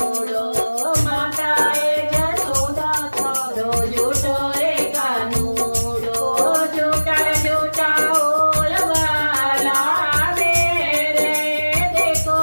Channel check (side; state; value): both; inverted; correlation -1.00